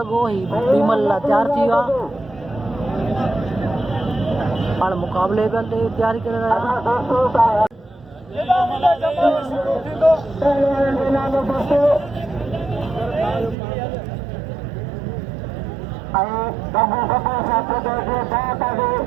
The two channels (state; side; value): drops out; left; at 13.6 s